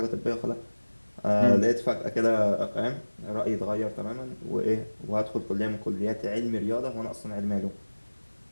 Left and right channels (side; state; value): both; inverted; correlation -1.00